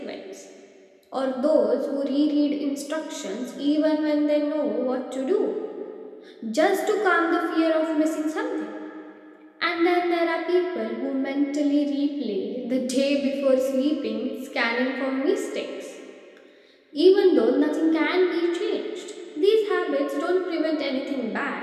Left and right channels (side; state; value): both; identical; correlation 1.00